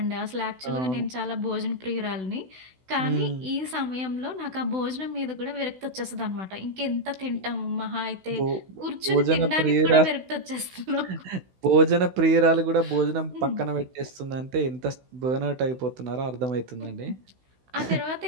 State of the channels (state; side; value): late; left; 16 ms